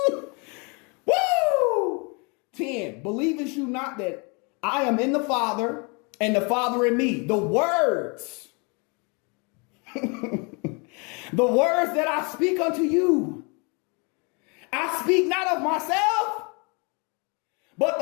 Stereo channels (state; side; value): quieter; right; 32.2 dB